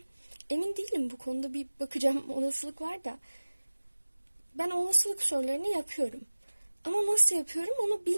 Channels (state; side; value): inverted; both; correlation -1.00